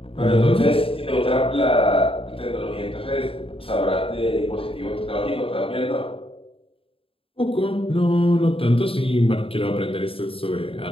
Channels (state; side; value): late; right; 0.27 ms